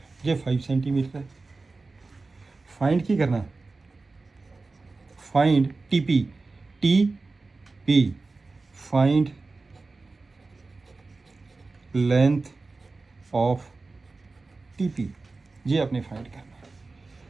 ये 5 सेंटीमीटर है। फाइंड की करना, find T P, find length of T P, ये आपने फाइंड करना है।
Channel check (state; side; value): quieter; left; 3.7 dB